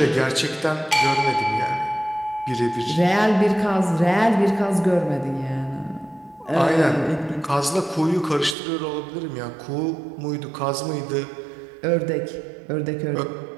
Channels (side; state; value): left; drops out; at 8.6 s